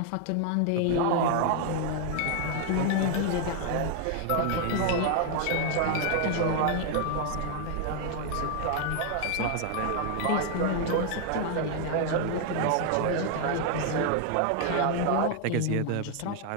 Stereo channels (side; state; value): both; different; correlation 0.00